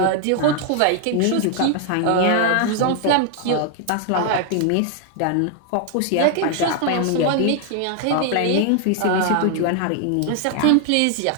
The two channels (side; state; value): both; different; correlation 0.00